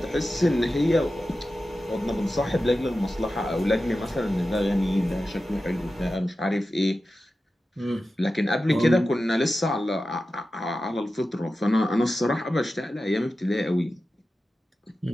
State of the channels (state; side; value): normal; both; correlation 0.93